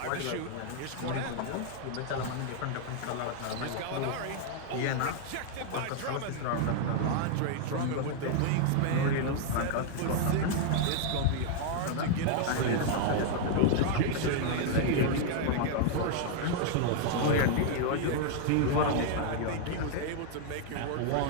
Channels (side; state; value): both; different; correlation 0.00